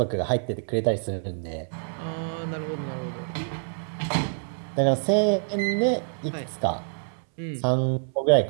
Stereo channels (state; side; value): silent; left; 60 dB below the other